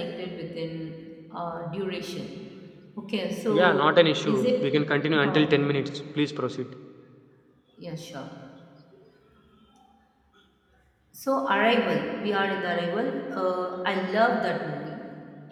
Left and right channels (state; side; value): identical; both; correlation 1.00